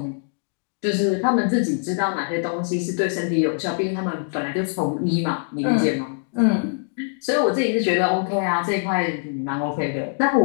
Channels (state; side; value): silent; right; digital silence